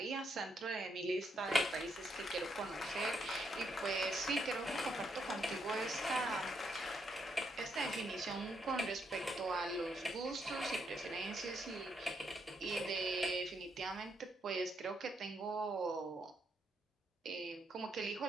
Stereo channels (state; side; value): normal; both; correlation 0.77